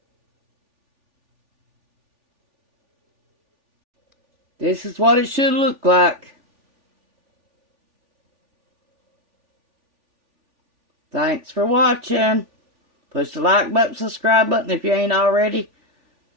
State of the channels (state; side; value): late; left; 3.4 ms